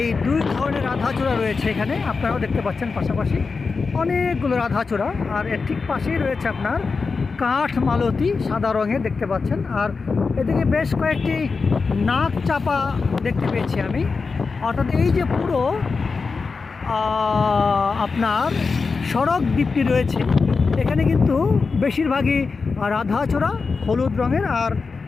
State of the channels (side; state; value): right; quieter; 4.6 dB